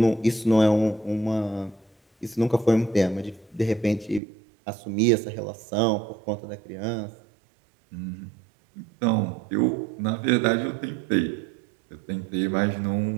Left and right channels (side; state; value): left; drops out; at 4.2 s